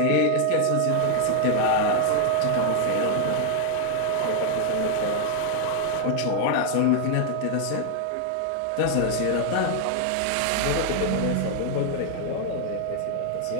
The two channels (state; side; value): different; both; correlation 0.00